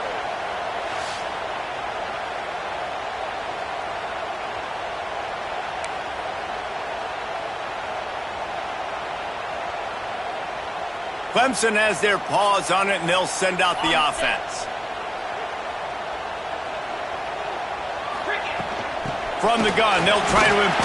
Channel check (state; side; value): identical; both; correlation 1.00